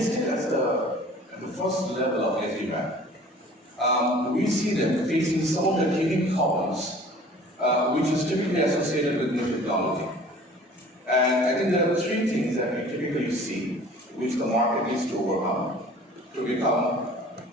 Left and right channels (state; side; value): normal; both; correlation 0.47